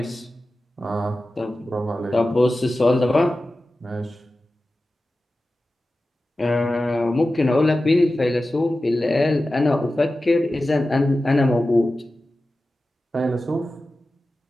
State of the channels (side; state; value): both; normal; correlation 0.94